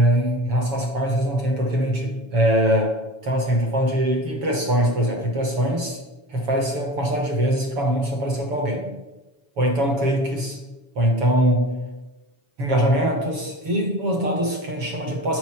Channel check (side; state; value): left; late; 7.1 ms